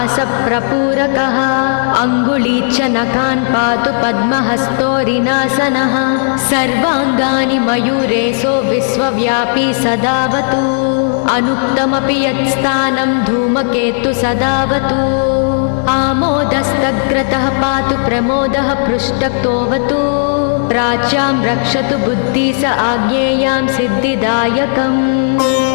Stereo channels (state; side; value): silent; right; digital silence